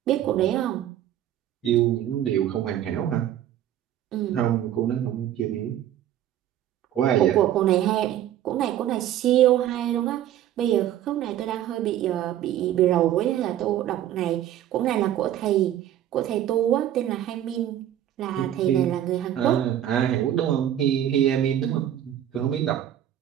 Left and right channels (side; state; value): left; quieter; 11.6 dB